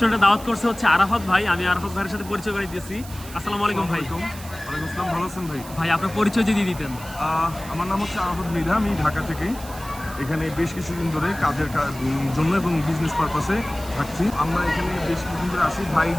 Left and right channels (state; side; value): noise; right; hiss, 16 dB below the sound